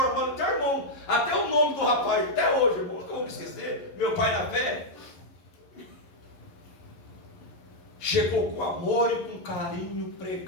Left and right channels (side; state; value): right; late; 11 ms